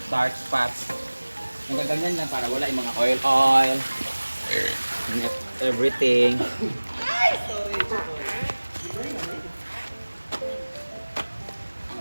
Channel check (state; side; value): inverted; both; correlation -1.00